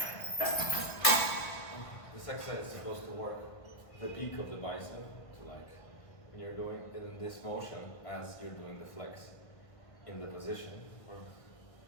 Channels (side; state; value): right; late; 1.7 ms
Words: This exercise is supposed to work the peak of the bicep, to like when you're doing it in this motion as you're doing the flex in the position, or